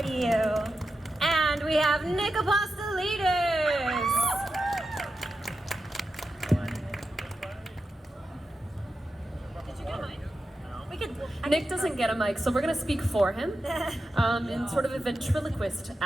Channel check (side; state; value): both; normal; correlation 0.90